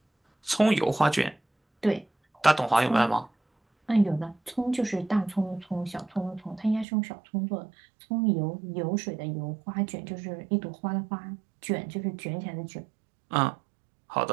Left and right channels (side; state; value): left; drops out; at 6.9 s